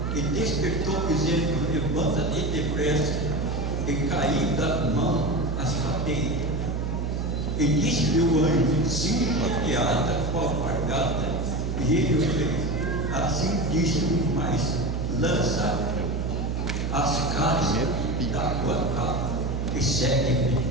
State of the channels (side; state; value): right; noise; hum, 1 dB below the sound